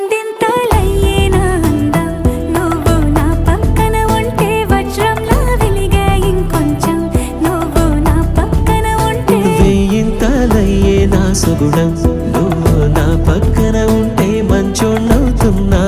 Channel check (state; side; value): identical; both; correlation 1.00